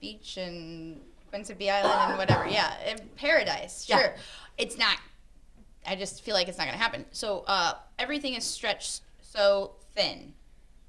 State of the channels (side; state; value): both; identical; correlation 1.00